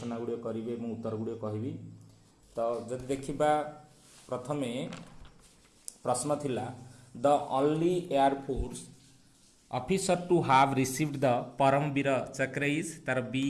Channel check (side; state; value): both; identical; correlation 1.00